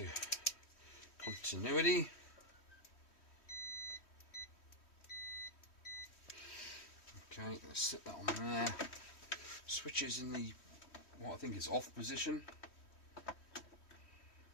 continuity. Okay, let's set that on there. Switches in the what I think is off position.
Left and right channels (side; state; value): right; late; 3.1 ms